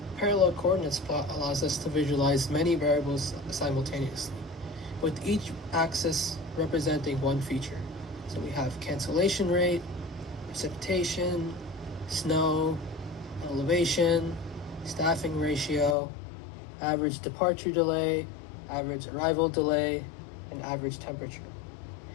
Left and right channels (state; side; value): drops out; right; at 16.0 s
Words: parallel coordinates plot allows us to visualize many variables simultaneously, with each axis representing one feature. So we have cancellation rate, precipitation, snow, elevation, staffing ratio, average departure delay, average arrival delay, and average temperature.